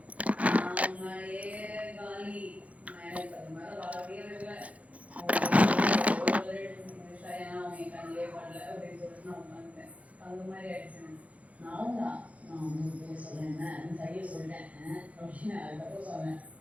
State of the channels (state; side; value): late; left; 0.067 ms